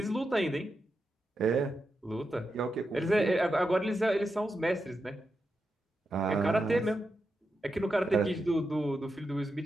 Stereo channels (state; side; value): normal; both; correlation 0.87